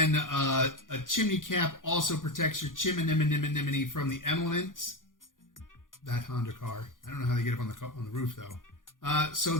a chimney cap also protects your chimney from the elements. That Honda car. I don't know how they get up on the roof though. So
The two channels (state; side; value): late; right; 0.89 ms